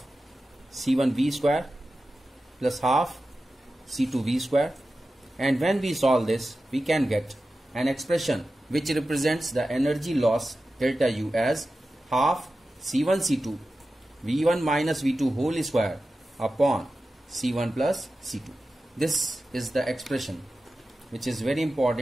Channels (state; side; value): normal; both; correlation 0.93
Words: C1V square plus half C2V square. And when we solve this, we can get an expression which represents the energy loss delta U as half C1 C2 V1 minus V2 whole square upon C1 plus C2. This is the expression which is very